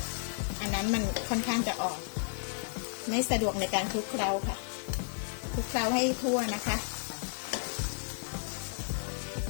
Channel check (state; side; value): silent; right; digital silence